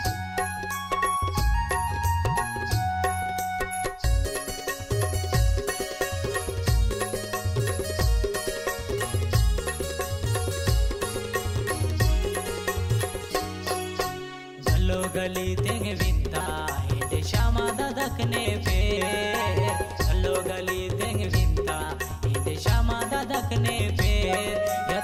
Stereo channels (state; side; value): identical; both; correlation 1.00